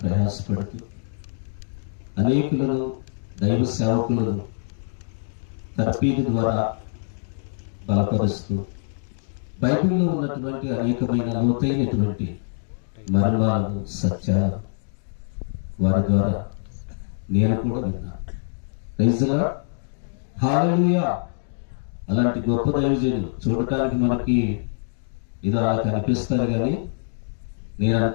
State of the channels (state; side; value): silent; right; digital silence